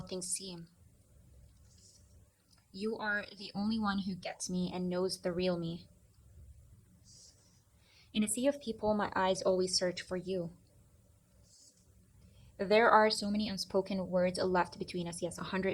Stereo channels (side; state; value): both; identical; correlation 1.00